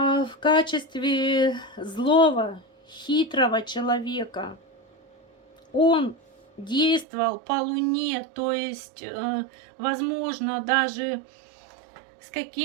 в качестве злого, хитрого человека. Он действовал по луне, то есть, возможно, даже с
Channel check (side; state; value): left; drops out; at 7.1 s